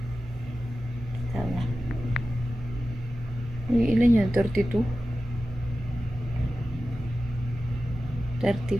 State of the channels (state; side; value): normal; both; correlation 0.94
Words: Tama. Uy, ilan yan? 32?